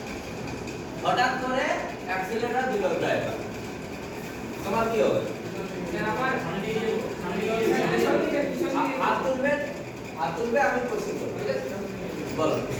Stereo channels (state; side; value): identical; both; correlation 1.00